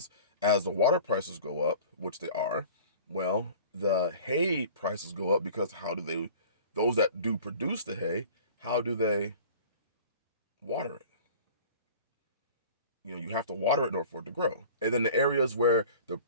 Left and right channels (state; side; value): inverted; both; correlation -0.43